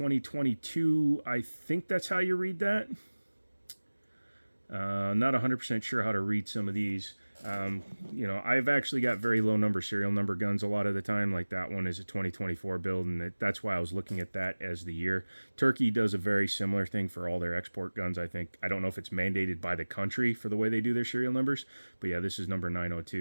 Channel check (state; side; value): inverted; both; correlation -1.00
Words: I think that's how you read that. Not 100% sure how to read some of these. You know, I've actually got very low number serial number guns a lot of the time. Like that one is a 2024 build, and that's why I was looking at that as the year. Turkey does a very similar thing for all their export guns, I think. I don't know if it's mandated by the country for the way they do their serial numbers, but yeah, this is number